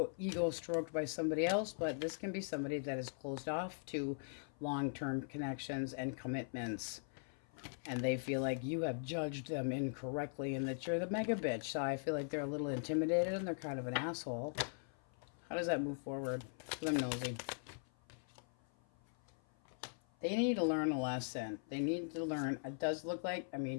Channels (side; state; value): right; silent; 51 dB below the other